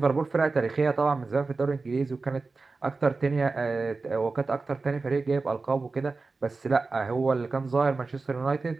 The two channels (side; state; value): left; quieter; 3.9 dB